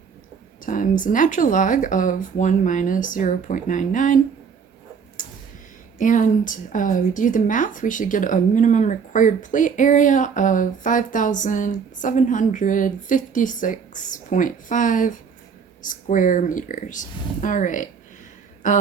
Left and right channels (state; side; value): quieter; left; 6.3 dB